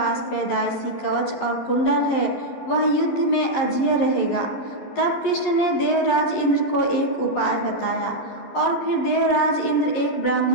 पैदाइशी कवच और कुंडल है वह युद्ध में अजेय रहेगा। तब कृष्ण ने देवराज इंद्र को एक उपाय बताया और फिर देवराज इंद्र एक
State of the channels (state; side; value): late; right; 11 ms